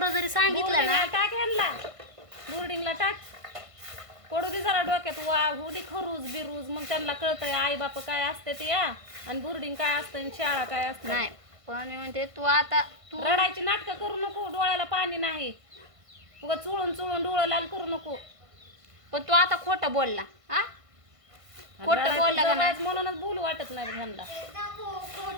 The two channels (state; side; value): late; left; 1.5 ms